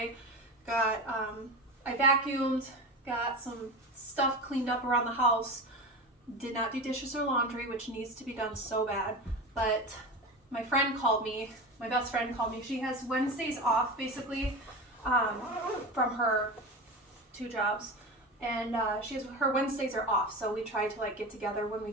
I vacuumed, got some stuff cleaned up around the house. Did not do dishes or laundry, which needs to be done so bad. But my friend called me, my best friend called me. She has Wednesdays off basically from her 2 jobs. And her Wednesdays are off, so we try to like get together when we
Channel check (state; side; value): normal; both; correlation 0.26